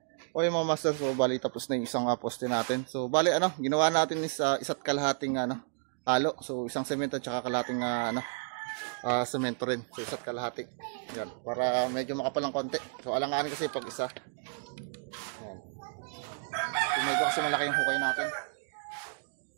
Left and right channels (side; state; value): left; silent; digital silence